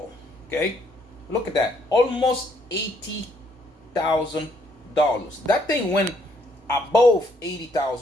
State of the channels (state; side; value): normal; both; correlation 0.69